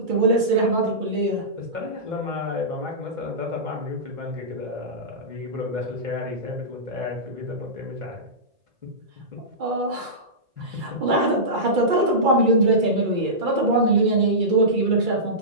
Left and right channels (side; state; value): left; late; 2.3 ms